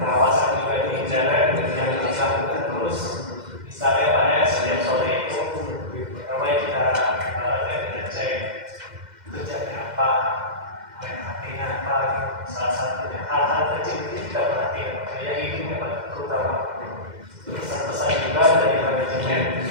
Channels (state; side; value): late; left; 2.1 ms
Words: juga di jalan yang dilakukan terus. Misalnya pada setiap sore itu, pertama kita cek kerjanya apa, main hatinya apa, salah satunya hal-hal kecil itu kita perhatikan. Yang ini memang terutama pesan-pesan juga dari manajemen